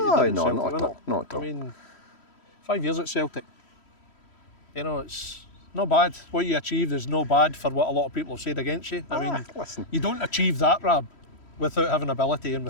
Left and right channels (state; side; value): late; right; 3.1 ms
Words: you did at no, Celtic, not at innit? all, not at all. I mean, 5 years at Celtic. You know, it's not bad. What you achieved is no bad for what a lot of people have said against you. I mean, Listen, you don't achieve that, Rab, without having ability and